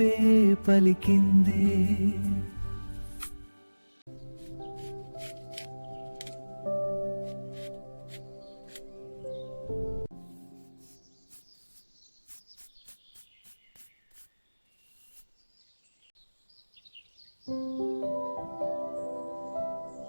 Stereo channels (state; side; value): inverted; both; correlation -1.00